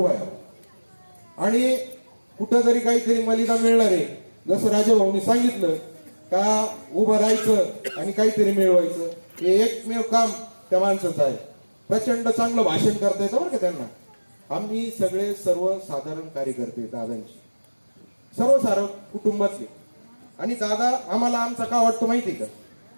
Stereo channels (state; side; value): inverted; both; correlation -1.00